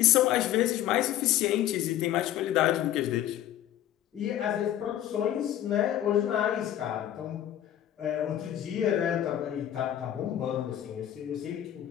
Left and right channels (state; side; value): quieter; right; 11.9 dB